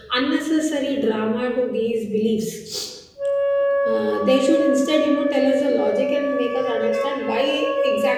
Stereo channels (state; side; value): identical; both; correlation 1.00